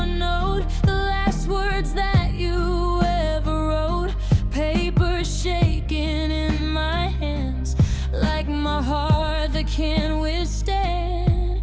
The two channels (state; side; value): identical; both; correlation 1.00